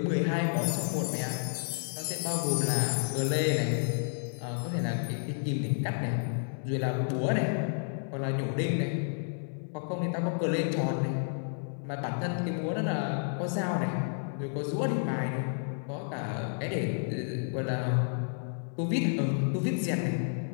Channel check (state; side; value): silent; right; digital silence